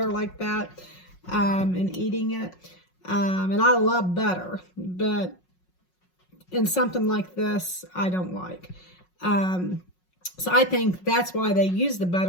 like that, and eating it, and I love butter, but in something like this I don't like. So I think that's why they use the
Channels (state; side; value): late; right; 5.5 ms